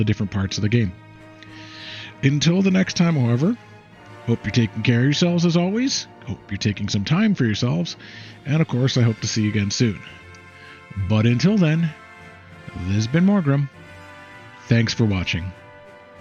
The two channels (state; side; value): identical; both; correlation 1.00